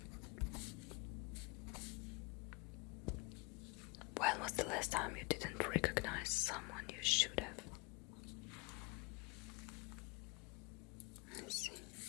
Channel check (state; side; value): quieter; right; 26.9 dB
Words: When was the last time you didn't recognize someone you should have? I see.